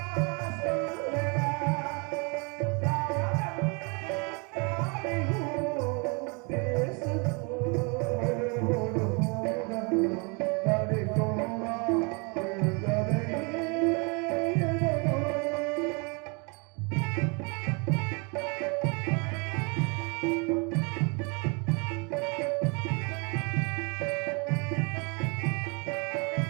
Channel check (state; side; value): quieter; left; 32.1 dB